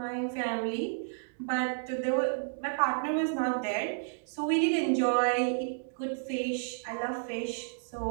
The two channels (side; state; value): left; silent; digital silence